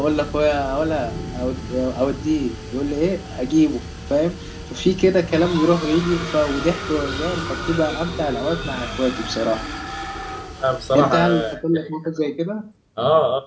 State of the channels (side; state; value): both; identical; correlation 1.00